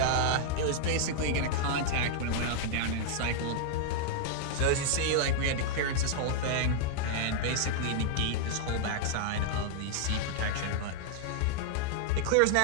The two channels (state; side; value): different; both; correlation -0.01